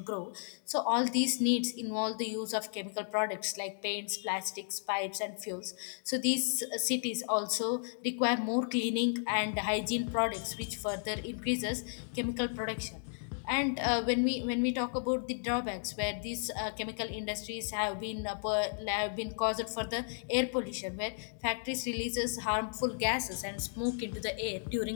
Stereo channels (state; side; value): silent; right; digital silence